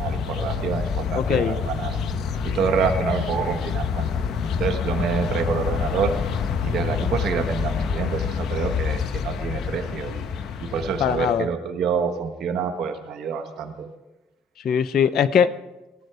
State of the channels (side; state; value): both; normal; correlation 0.58